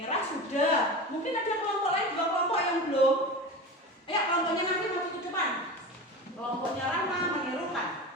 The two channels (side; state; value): both; normal; correlation 0.29